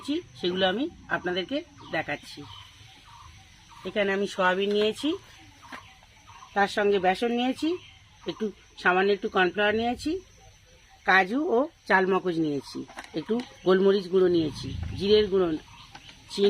সেগুলো আমি আপনাদেরকে দেখাচ্ছি। এখানে আমি সোয়াবিন নিয়েছি, তার সঙ্গে বেসন নিয়েছি, সামান্য একটু কর্নফ্লাওয়ার নিয়েছি, কাজু ও চালমগজ নিয়েছি, একটু গোলমরিচ গুঁড়ো নিয়েছি, জিরের গুঁড়ো,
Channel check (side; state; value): both; identical; correlation 1.00